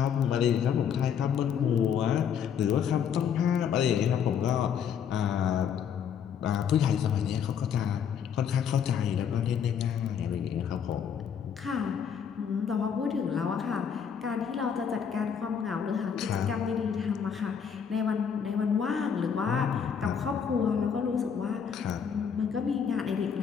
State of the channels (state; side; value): quieter; right; 7.6 dB